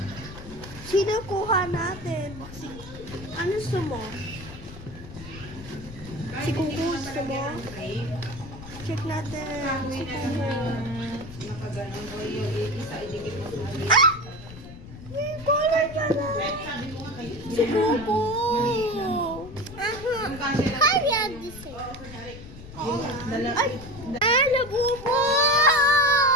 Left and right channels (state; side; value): noise; left; rumble, 14 dB below the sound